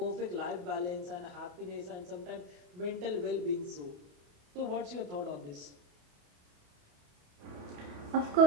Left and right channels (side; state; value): left; late; 28 ms